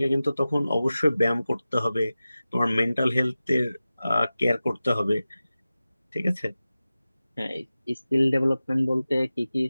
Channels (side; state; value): both; inverted; correlation -0.95